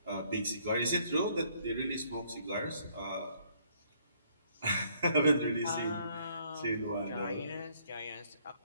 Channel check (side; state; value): both; inverted; correlation -0.66